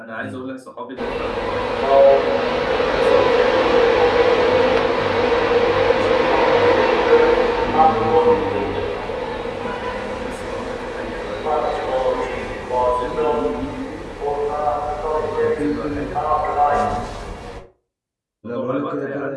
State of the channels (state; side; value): identical; both; correlation 1.00